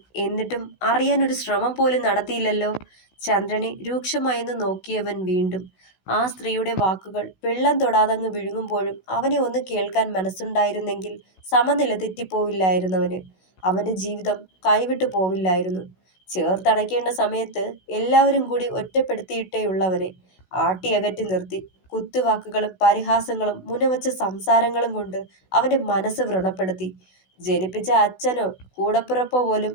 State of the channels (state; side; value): late; right; 16 ms